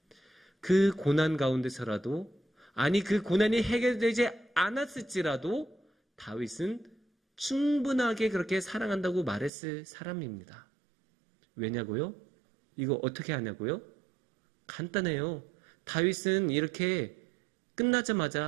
그 고난 가운데서라도 아니 그 고난이 해결되지 않았을지라도 다윗은 충분하게 그렇게 사랑한다고 말했을 사람입니다. 왜냐고요? 이거 어떻게 하냐고요? 간단해요. 다윗은 이렇게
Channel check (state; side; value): drops out; left; at 9.5 s